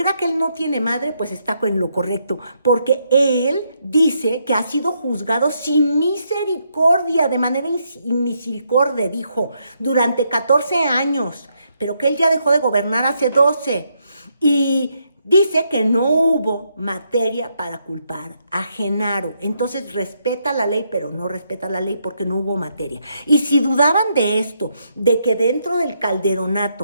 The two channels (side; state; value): both; inverted; correlation -0.77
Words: que él no tiene madre, pues está en lo correcto, porque él dice que ha sido juzgado sin misericordia, de manera inmisericordia, dijo, durante 14 años, pero que él ya dejó de gobernar hace 12, y dice que no hubo materia para culpar a Genaro. Entonces respeta la ley, pero no respeta la ley porque no hubo materia. Y si dudaban de esto, de que dentro del